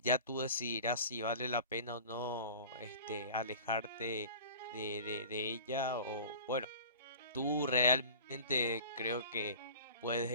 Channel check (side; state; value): both; inverted; correlation -0.39